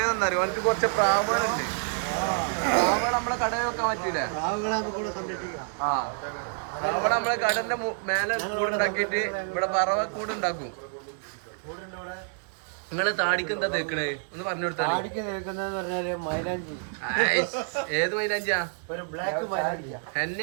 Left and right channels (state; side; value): silent; left; 59 dB below the other